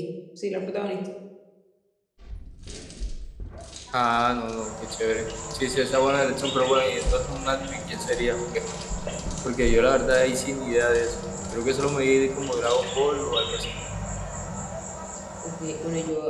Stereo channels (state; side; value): identical; both; correlation 1.00